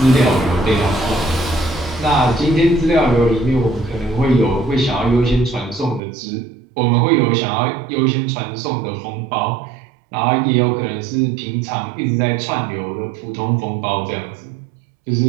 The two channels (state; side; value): drops out; left; at 6.0 s